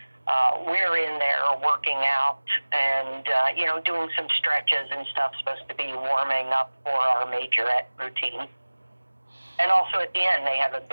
we're in there working out and, doing some stretches and stuff, supposed to be warming up for our majorette routine. And also at the end, they have a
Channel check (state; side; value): inverted; both; correlation -1.00